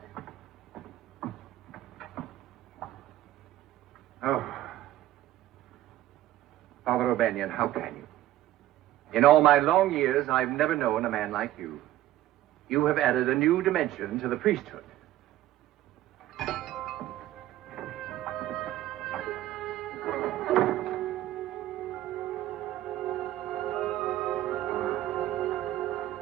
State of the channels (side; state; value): left; quieter; 14.3 dB